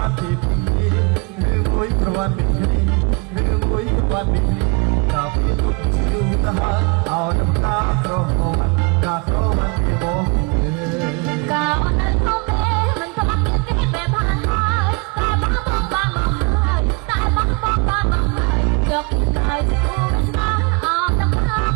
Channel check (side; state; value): left; quieter; 27.0 dB